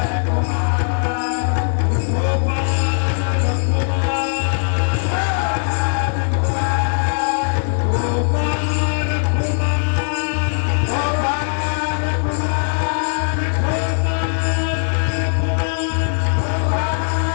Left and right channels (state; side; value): silent; right; 66 dB below the other